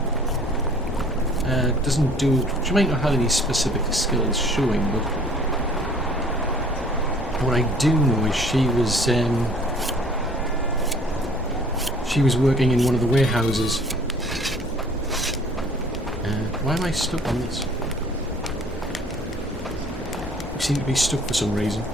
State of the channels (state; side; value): normal; both; correlation 0.53